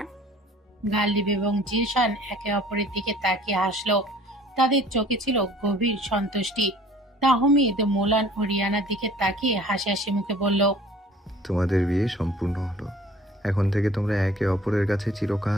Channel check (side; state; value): both; normal; correlation 0.51